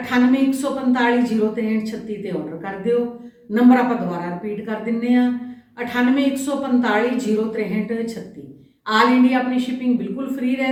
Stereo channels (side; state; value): both; identical; correlation 1.00